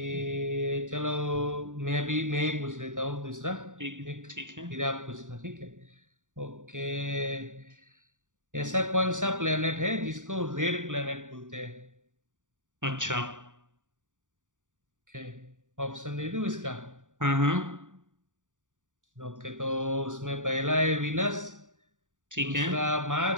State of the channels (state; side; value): late; left; 0.87 ms